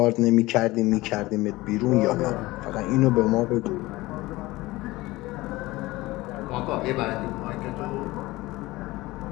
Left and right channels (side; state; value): right; quieter; 19.6 dB